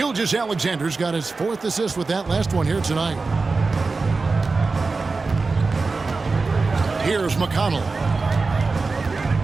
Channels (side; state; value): left; quieter; 4.0 dB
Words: got his 4th assist with that last one here tonight. Here's McConnell.